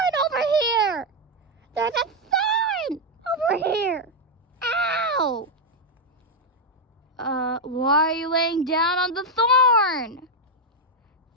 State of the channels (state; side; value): normal; both; correlation 0.01